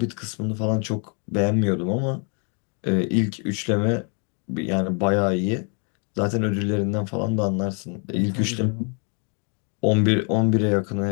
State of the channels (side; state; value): right; quieter; 39.5 dB